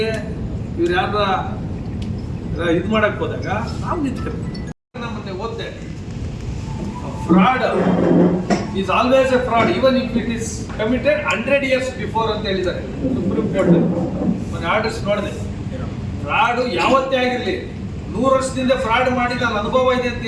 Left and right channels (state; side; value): identical; both; correlation 1.00